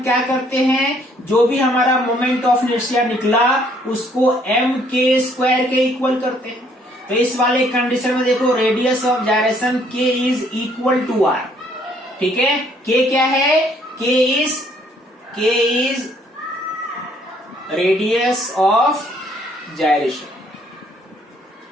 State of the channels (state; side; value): normal; both; correlation 0.65